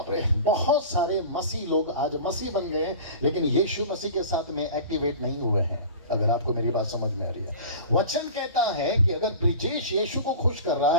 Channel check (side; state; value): both; inverted; correlation -0.36